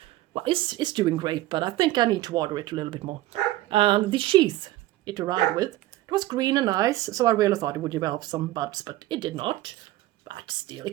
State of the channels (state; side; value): quieter; left; 16.3 dB